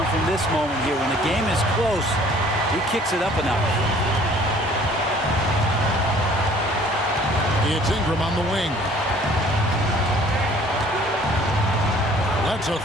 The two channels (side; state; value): both; normal; correlation 0.54